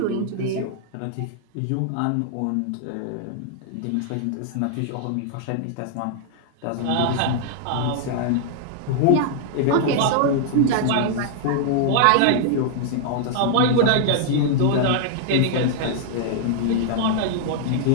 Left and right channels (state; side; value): different; both; correlation 0.00